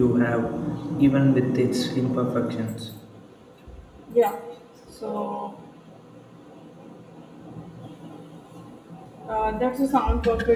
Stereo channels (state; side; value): identical; both; correlation 1.00